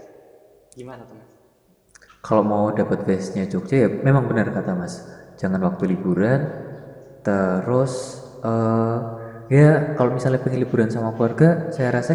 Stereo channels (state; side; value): identical; both; correlation 1.00